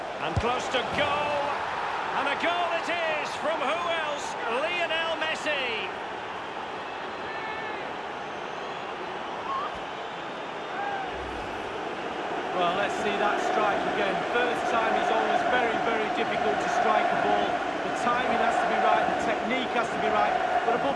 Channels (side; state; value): both; identical; correlation 1.00